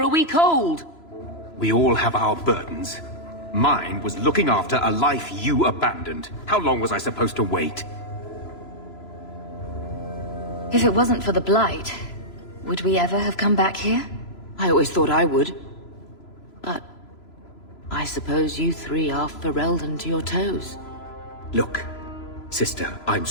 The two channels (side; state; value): right; late; 3.0 ms